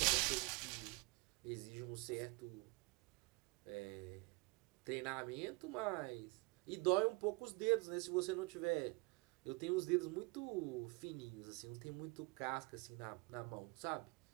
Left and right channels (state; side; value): quieter; left; 25.8 dB